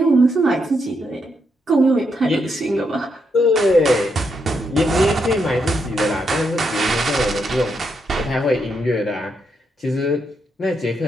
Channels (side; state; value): both; normal; correlation 0.80